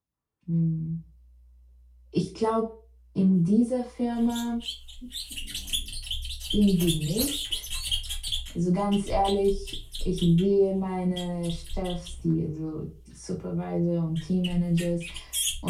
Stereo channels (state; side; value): identical; both; correlation 1.00